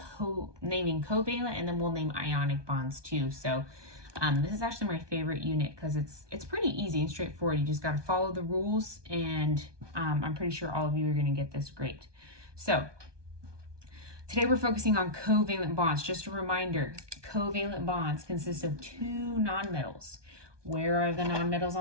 covalent, and then we'll name ionic bonds too. So this is actually my favorite unit because it's pretty easy and straightforward. You just got to follow the rules, and I'm pretty sure all of you are going to get this great. So today we're focusing on covalent bonds. Just a reminder, covalent bonds consist of two nonmetals. Where are the nonmetals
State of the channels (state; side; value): late; left; 1.2 ms